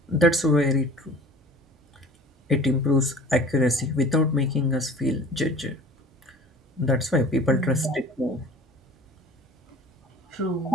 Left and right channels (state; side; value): normal; both; correlation 0.44